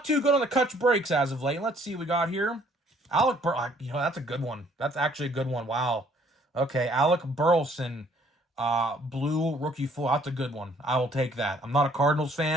too good on the Kutch breaks as of late. Let's see what we got here. Alec that's a good one. That's actually a good one. Wow. Okay, Alec Burleson, blue rookie full. That's a good one. I will take that. I'm not a Cardinals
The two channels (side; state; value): both; normal; correlation 0.61